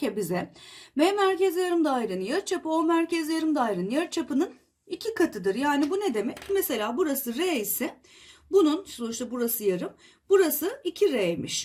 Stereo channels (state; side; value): identical; both; correlation 1.00